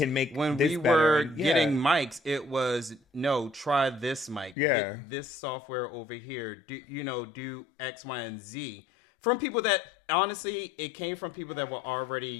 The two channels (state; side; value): drops out; right; at 4.5 s